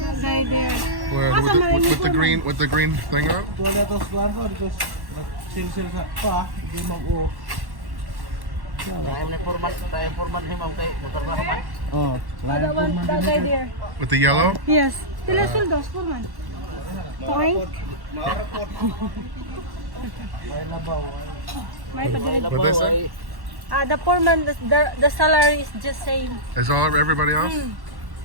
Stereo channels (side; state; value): left; late; 1.1 ms